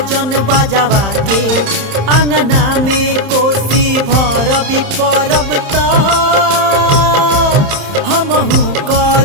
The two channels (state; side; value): late; left; 31 ms